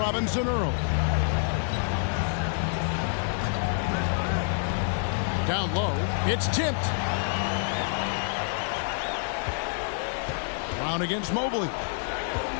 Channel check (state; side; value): silent; right; 56 dB below the other